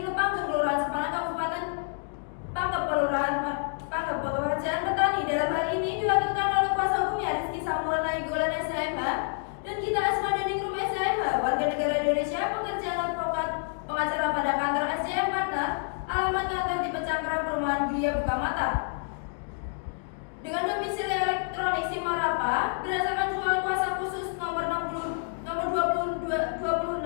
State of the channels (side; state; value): right; silent; digital silence